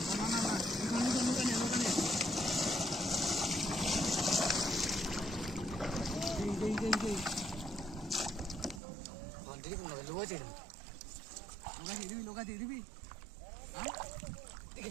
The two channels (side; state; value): left; drops out; at 8.8 s